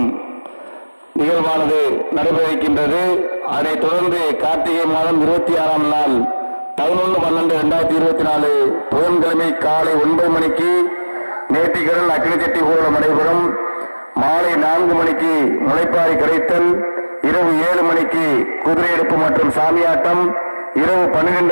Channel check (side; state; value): both; inverted; correlation -1.00